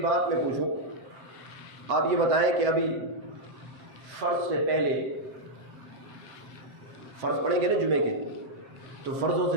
بات میں پوچھوں، آپ یہ بتائیں کہ ابھی فرض سے پہلے، فرض پڑھیں گے نا جمعے کے، تو فرضوں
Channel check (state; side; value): late; left; 7.4 ms